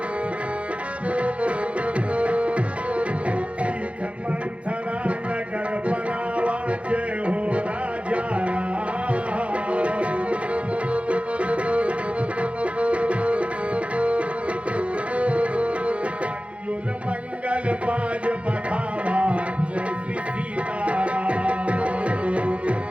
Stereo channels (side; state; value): left; late; 0.062 ms